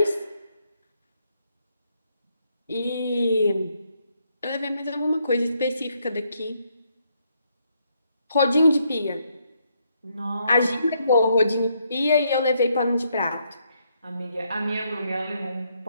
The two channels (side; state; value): both; inverted; correlation -0.75